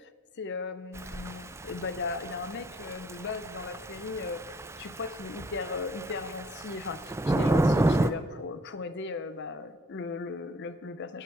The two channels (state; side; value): normal; both; correlation 0.61